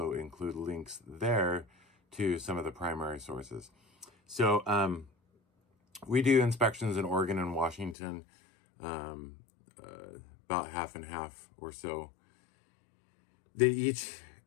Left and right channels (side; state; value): right; drops out; at 8.0 s